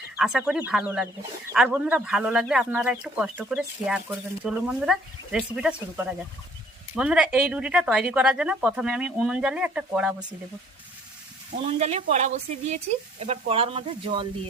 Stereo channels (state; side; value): normal; both; correlation 0.58